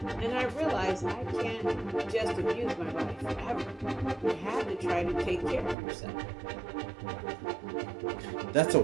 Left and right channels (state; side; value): drops out; left; at 5.8 s